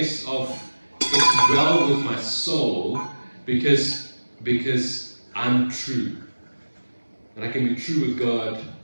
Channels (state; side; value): inverted; both; correlation -1.00